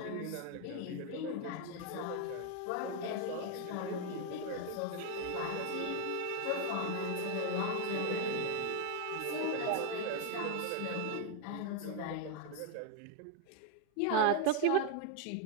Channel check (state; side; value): different; both; correlation 0.01